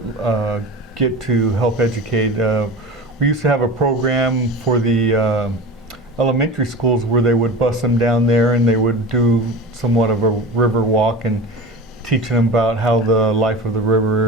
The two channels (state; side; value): normal; both; correlation 0.32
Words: get to help educate. We used to have a program for the elementary schools where they would bus them down there, and they would do somewhat of a river walk and teaching them about how the life of the